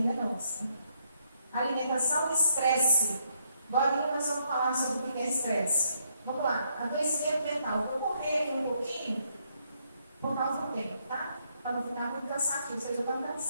é nossa. Alimentação e estresse. Agora nós vamos falar sobre o que é estresse. Vamos lá, adoecimento mental. Vou correr aqui um pouquinho, por causa do tempo, tá? Para não ficar muito cansativo, vocês já estão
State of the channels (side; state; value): both; inverted; correlation -0.74